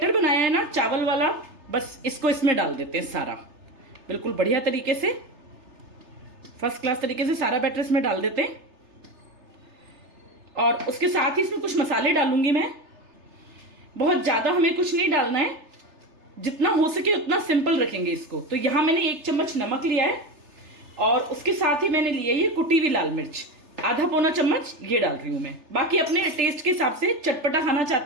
बनाया है ना चावल वाला, बस इसको इसमें डाल देते हैं सारा, बिल्कुल बढ़िया तरीके से, फर्स्ट क्लास तरीके से सारा बैटर इसमें डाल देते हैं। और उसके साथ ही इसमें कुछ मसाले डालूंगी मैं। बहुत ज्यादा हमें कुछ नहीं डालना है, जितना हो सके उतना सिंपल रखेंगे इसको। तो यहां मैंने 1 चम्मच नमक लिया है, और उसके साथ ही मैंने लिया ये कुटी हुई लाल मिर्च, आधा पौना चम्मच ये डाल रही हूं मैं। बाकी अपने टेस्ट के हिसाब से चटपटा खाना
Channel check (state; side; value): late; left; 3.3 ms